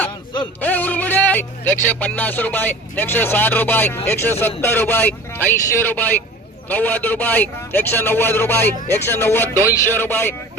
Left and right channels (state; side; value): normal; both; correlation 0.40